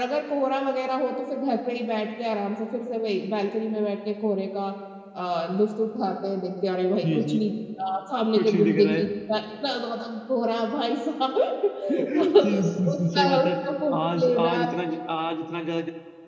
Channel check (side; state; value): both; identical; correlation 1.00